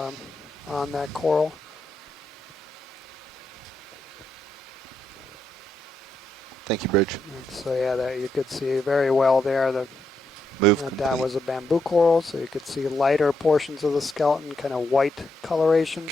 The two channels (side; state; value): both; normal; correlation 0.81